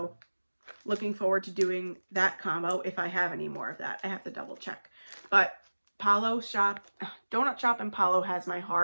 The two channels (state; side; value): inverted; both; correlation -1.00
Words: looking forward to doing that combo if I have any more of that. I have to double check. But Donut Shop and Palo has my